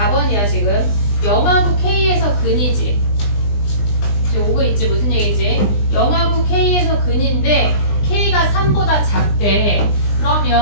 지금. 영하고 K에서 근이지. 지금 오고 있지. 무슨 얘기지? 영하고 K에서 근인데 K가 3보다 작대.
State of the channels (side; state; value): right; late; 20 ms